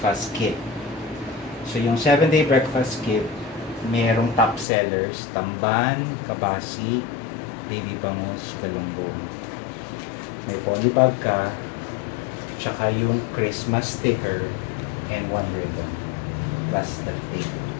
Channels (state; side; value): drops out; right; at 4.7 s